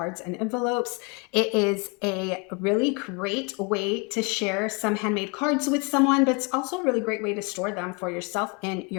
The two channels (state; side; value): quieter; right; 30.9 dB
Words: and envelopes. It is a really great way to share some handmade cards with someone, but it's also a really great way to store them for yourself in